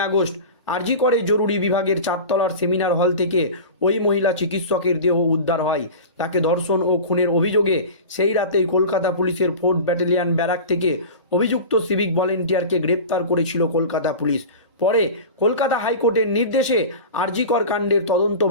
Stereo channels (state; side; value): inverted; both; correlation -0.32